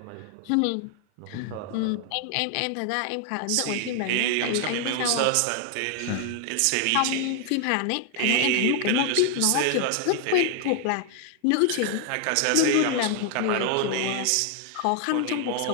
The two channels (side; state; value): both; different; correlation 0.00